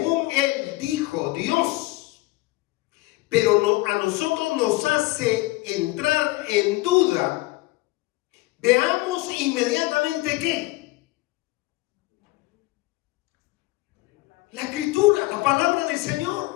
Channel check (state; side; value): quieter; right; 20.6 dB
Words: él dijo Dios, pero a nosotros nos hace entrar en duda, veamos inmediatamente ¿qué? La Escritura, la palabra del